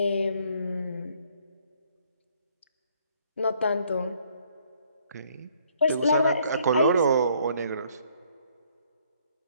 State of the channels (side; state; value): both; inverted; correlation -0.65